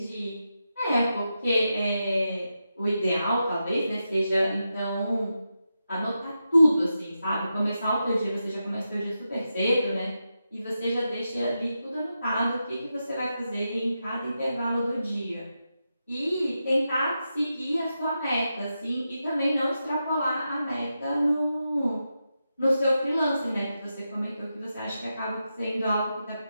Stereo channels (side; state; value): both; inverted; correlation -0.88